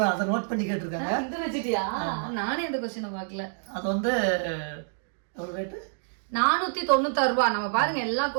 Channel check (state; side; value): silent; left; digital silence